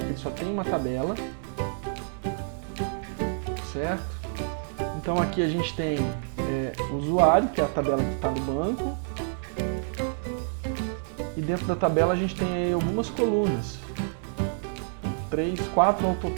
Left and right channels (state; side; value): silent; left; digital silence